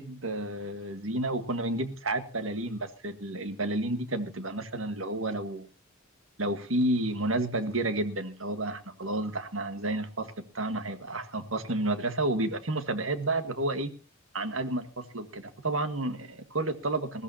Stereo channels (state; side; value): normal; both; correlation 0.07